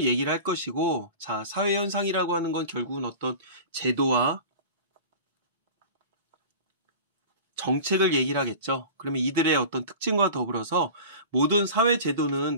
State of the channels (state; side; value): inverted; both; correlation -0.36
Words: 얘기를 할 것이고, 자, 사회 현상이라고 하는 건 결국은 어떤 제도와 정책을 얘기를 하겠죠. 그러면 이들의 어떤 특징과 더불어서 모든 사회